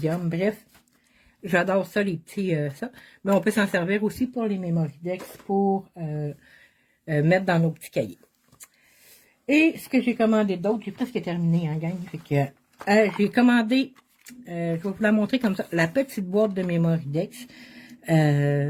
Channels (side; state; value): both; identical; correlation 1.00